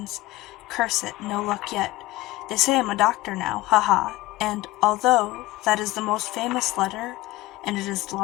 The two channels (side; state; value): right; quieter; 18.8 dB